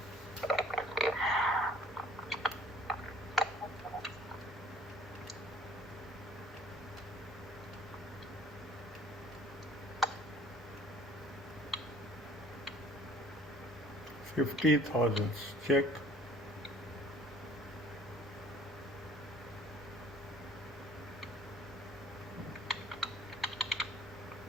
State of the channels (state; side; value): normal; both; correlation 0.53